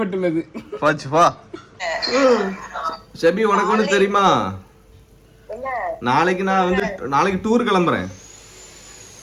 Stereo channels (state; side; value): identical; both; correlation 1.00